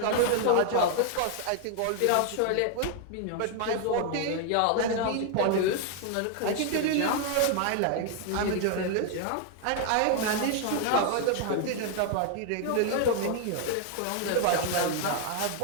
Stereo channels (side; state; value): both; different; correlation 0.00